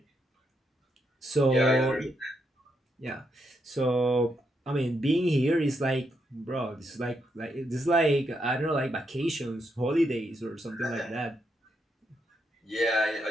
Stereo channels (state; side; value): normal; both; correlation 0.80